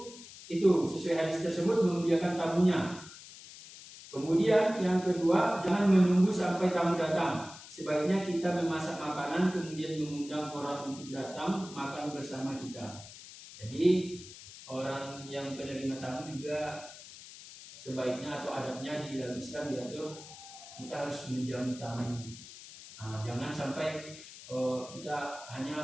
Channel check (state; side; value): noise; left; hiss, 16 dB below the sound